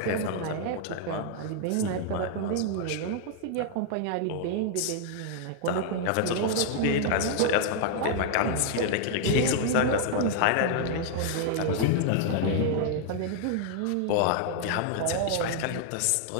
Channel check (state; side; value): different; both; correlation 0.00